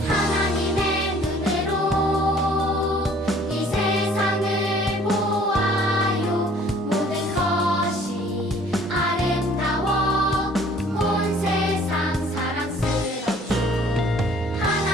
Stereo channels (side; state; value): both; normal; correlation 0.55